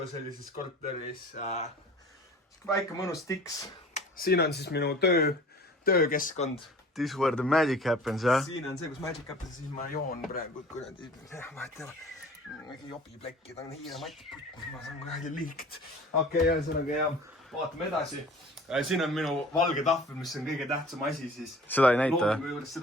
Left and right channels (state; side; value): normal; both; correlation 0.45